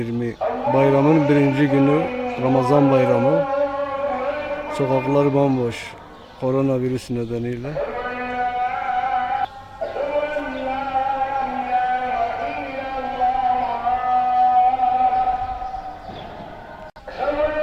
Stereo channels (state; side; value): identical; both; correlation 1.00